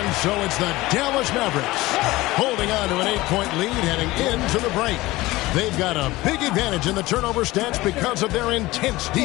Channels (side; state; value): right; quieter; 19.1 dB